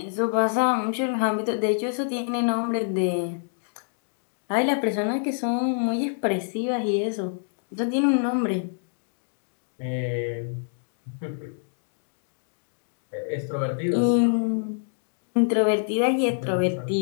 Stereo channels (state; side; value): silent; right; digital silence